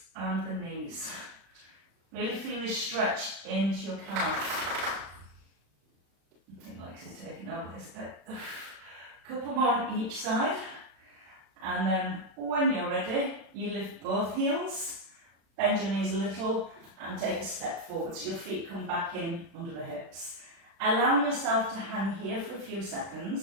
and the knees. Really feel this stretch into your calf. I think Lex is taking over this bit. A couple more on each side. And then when you're ready, you lift both heels, bend your knees a little and take a step forward so your feet come back in under the hips. Allowing yourself to hang here for a few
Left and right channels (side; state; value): left; late; 36 ms